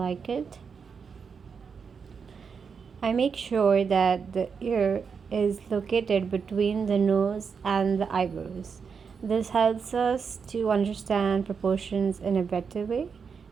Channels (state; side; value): quieter; left; 6.0 dB